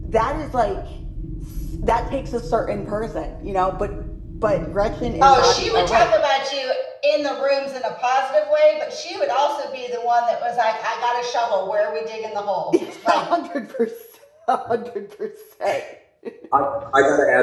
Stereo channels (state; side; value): identical; both; correlation 1.00